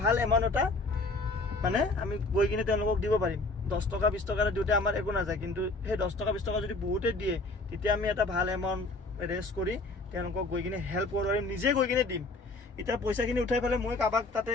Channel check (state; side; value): quieter; right; 3.1 dB